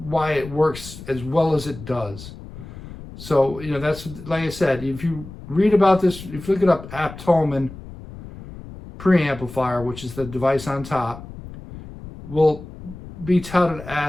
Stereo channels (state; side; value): noise; left; rumble, 14 dB below the sound